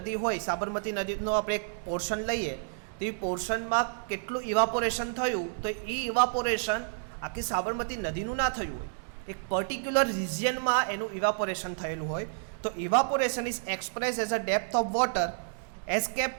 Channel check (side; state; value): left; silent; digital silence